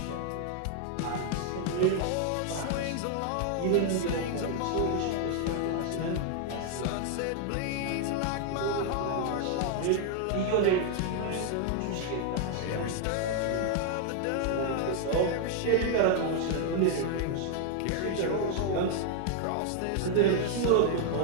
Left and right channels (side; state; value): both; different; correlation 0.00